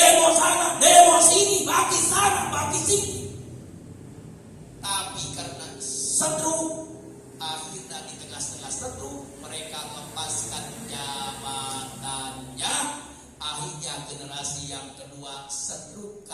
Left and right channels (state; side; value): identical; both; correlation 1.00